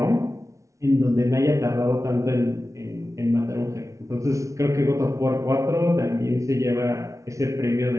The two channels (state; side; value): late; left; 0.15 ms